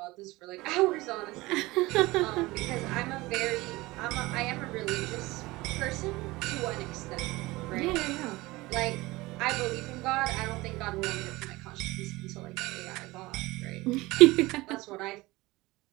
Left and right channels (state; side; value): quieter; left; 20.7 dB